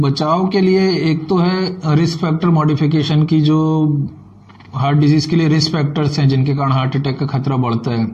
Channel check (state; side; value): identical; both; correlation 1.00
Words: के लिए एक तो है रिस्क फैक्टर मॉडिफिकेशन की, जो हार्ट डिजीज के लिए रिस्क फैक्टर्स हैं जिनके कारण हार्ट अटैक का खतरा बढ़ता है,